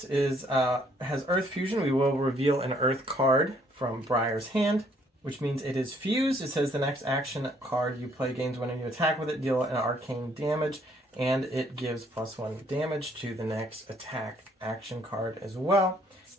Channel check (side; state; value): both; normal; correlation 0.65